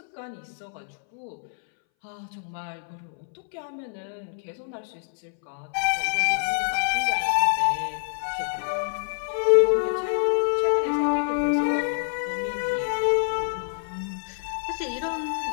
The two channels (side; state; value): right; silent; 61 dB below the other